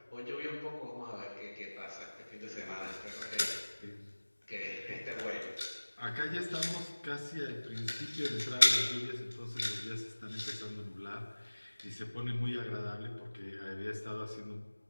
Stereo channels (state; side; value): inverted; both; correlation -1.00